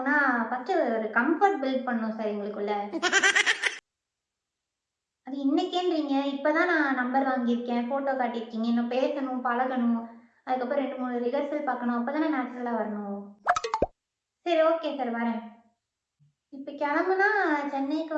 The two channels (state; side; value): identical; both; correlation 1.00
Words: ஃபஸ்ட்டு ஒரு கம்ஃபர்ட் பில்ட் பண்ணணும் சார் எங்களுக்குள்ள. அது இன்னைக்கேன்றீங்க, இப்போதான் நான் நம்பர் வாங்கியிருக்கேன், ஃபோட்டோ காட்டியிருக்கீங்க, இன்னும் பேசணும், பழகணும், அதுக்கப்புறம் 2-3 ரிஹர்சல் பார்க்கணும், அப்போ தானே நேச்சுரலாக வரணும். சரி ஓகே சார், வரேன். இப்போ கிளம்புனா சென்னைக்கு